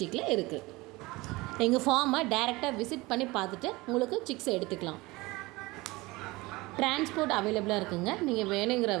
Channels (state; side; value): quieter; left; 21.9 dB